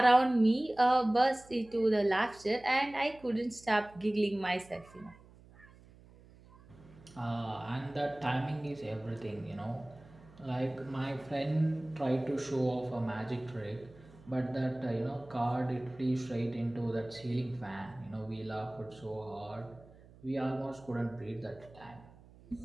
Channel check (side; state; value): right; noise; hum, 23 dB below the sound